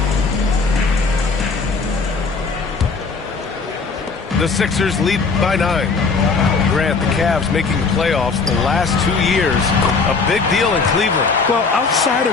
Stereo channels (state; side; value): quieter; right; 4.5 dB